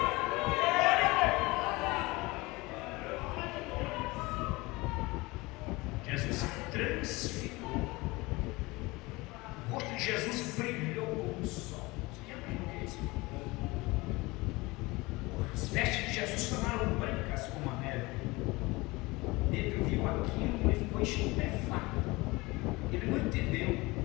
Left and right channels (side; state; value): right; quieter; 22.7 dB